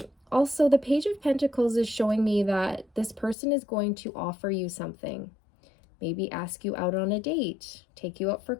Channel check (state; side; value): drops out; right; at 3.4 s